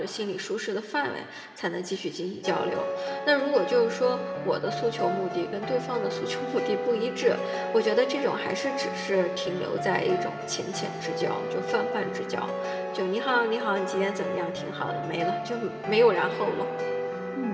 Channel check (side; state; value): both; identical; correlation 1.00